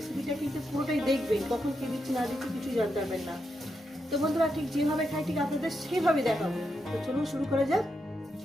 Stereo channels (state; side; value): normal; both; correlation 0.84